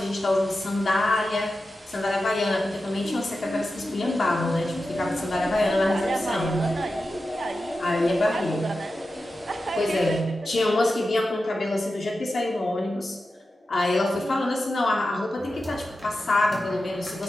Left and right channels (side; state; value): both; normal; correlation 0.92